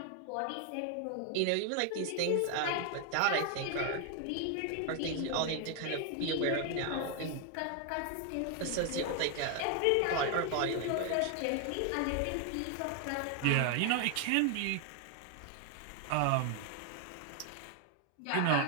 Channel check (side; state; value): both; different; correlation 0.00